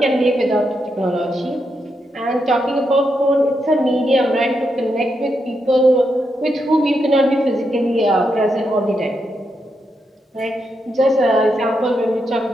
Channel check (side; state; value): both; normal; correlation 0.83